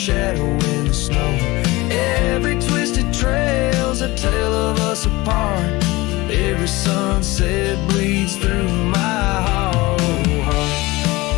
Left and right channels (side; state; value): right; quieter; 21.3 dB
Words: in the snow. Every twisted trail's a tale of us apart. Every sunset bleeds through my hollow heart.